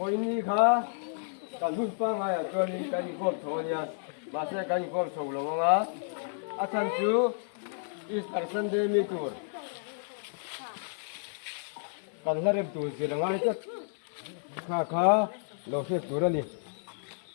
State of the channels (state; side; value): silent; right; digital silence